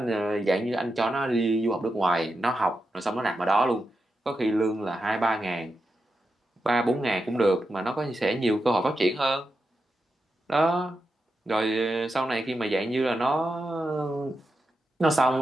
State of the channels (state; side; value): normal; both; correlation 0.88